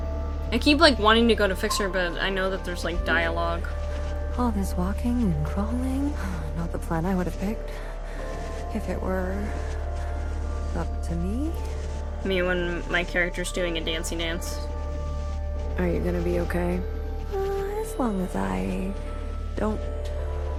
I keep like wanting to go to fix her, but I know that there's like dialogue. All this walking and crawling, not the plan I would have picked. If it were up to me. Me when my character's doing a dancey dance. Are you gonna be okay? As long as I don't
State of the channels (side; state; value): both; identical; correlation 1.00